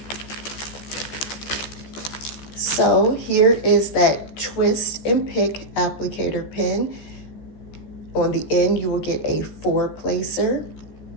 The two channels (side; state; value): right; late; 14 ms